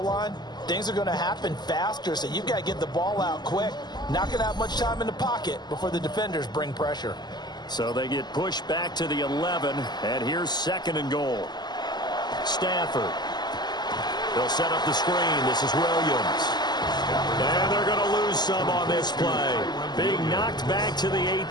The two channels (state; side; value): late; right; 0.21 ms